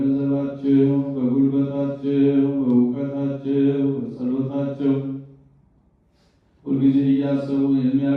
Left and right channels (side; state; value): both; identical; correlation 1.00